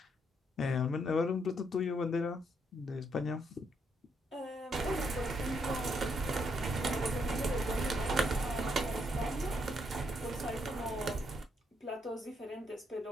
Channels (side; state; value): both; normal; correlation 0.75